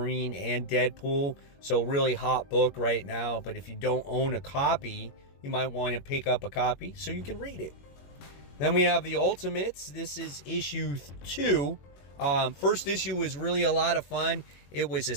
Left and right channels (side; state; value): right; late; 21 ms